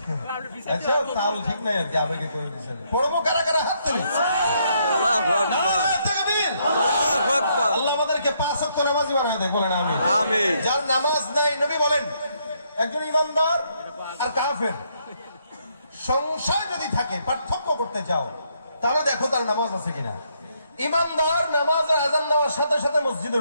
আচ্ছা, তাহলে ঠিক নাই আর কি, আবেগে করে দিচ্ছেন। পড়বো কারা কারা, হাত তুলে। আল্লাহ আমাদেরকে 5 ওয়াক্ত নামাজি বানায় দেয়, বলেন আমিন। যার নামাজ নাই, নবী বলেন একজন ইমানদার আর কাফের সংশয় যদি থাকে, পার্থক্য করতে চাও, তাহলে দেখো তার নামাজ আছে কিনা। ইমানদার নামাজের আযান দেওয়ার সাথে সাথে মসজিদে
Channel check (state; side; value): inverted; both; correlation -0.73